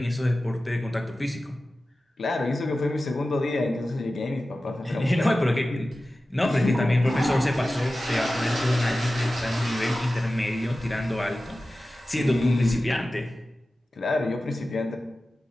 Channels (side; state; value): both; normal; correlation 0.95